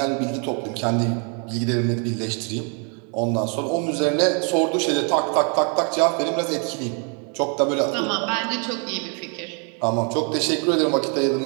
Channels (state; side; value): quieter; left; 38.2 dB